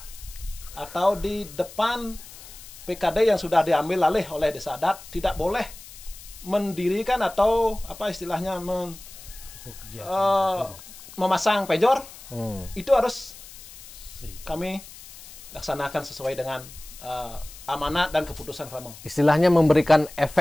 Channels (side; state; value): left; noise; hiss, 17 dB below the sound